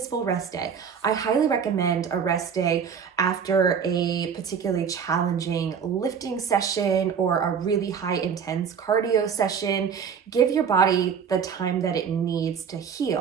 rest day. I highly recommend a rest day after a particularly challenging lifting session or a really high intense cardio session. Give your body the time that it needs to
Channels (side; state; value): left; quieter; 7.0 dB